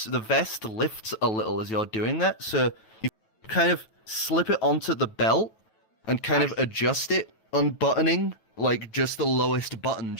vest lifts a little as you're doing that, so you kind of slip it onto the belt and kind of adjust it, unbuttoning like just the lowest button,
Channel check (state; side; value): late; right; 9.2 ms